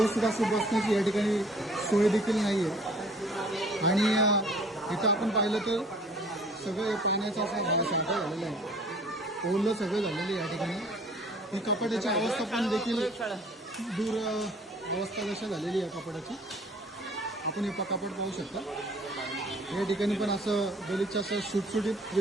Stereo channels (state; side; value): normal; both; correlation 0.54